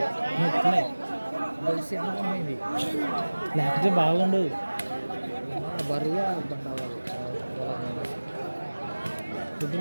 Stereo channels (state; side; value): inverted; both; correlation -1.00